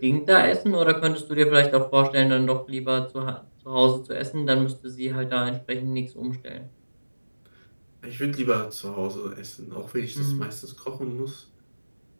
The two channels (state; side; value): inverted; both; correlation -1.00